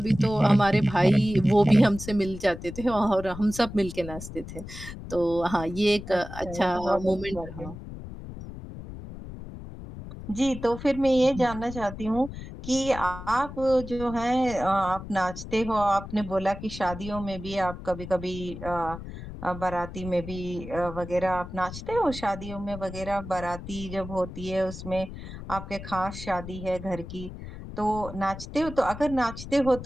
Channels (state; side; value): noise; left; rumble, 11 dB below the sound